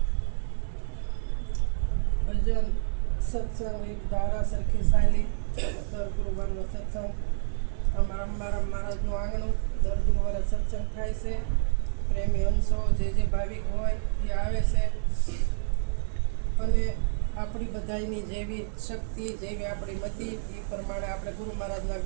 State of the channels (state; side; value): silent; left; 59 dB below the other